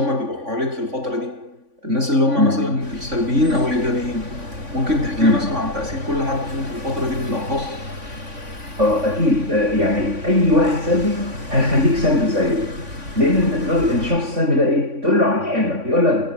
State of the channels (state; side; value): late; left; 3.5 ms